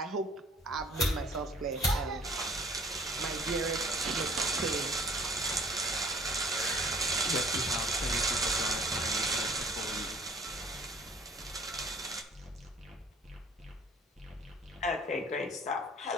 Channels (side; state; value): both; normal; correlation 0.52